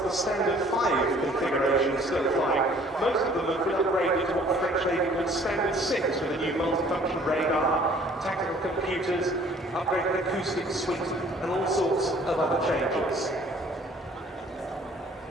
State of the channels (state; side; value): normal; both; correlation 0.55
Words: the Standard 5 configuration still flying. Most of them have been upgraded to what the French Navy called Standard 6 with a new multifunction radar, tactical computers, upgraded acoustic suite, and all sorts of other changes.